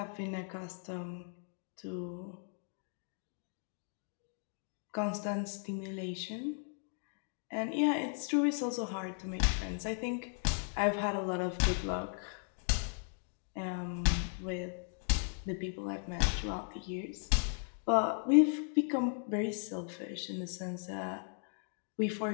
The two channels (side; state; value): right; silent; 53 dB below the other